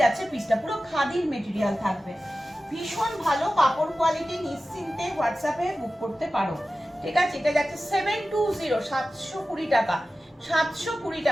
পিসটা, পুরো খাদির মেটেরিয়াল থাকবে, ভীষণ ভালো কাপড় কোয়ালিটি। নিশ্চিন্তে হোয়াটসঅ্যাপে বুক করতে পারো, ঠিক আছে। এটা যাচ্ছে 720, 720 টাকা, 720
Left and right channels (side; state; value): both; normal; correlation 0.95